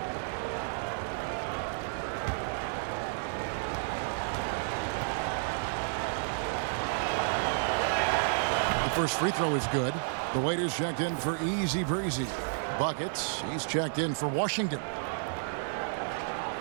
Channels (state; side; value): silent; left; digital silence